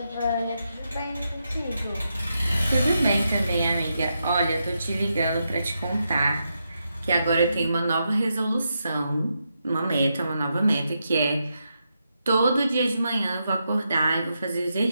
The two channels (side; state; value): both; inverted; correlation -0.84